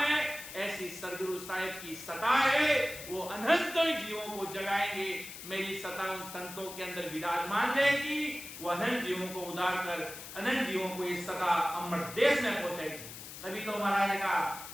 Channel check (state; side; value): noise; left; hiss, 12 dB below the sound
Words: ऐसी सदगुरु साहिब की सता है, वो अनंत जीवों को जगाएंगे। मेरी सता उन संतों के अंदर विराजमान रहेगी, वो अनंत जीवों को उदार कर अनंत जीवों को इस सता अमर देश में पहुंचेगी। तभी तो महाराज ने कहा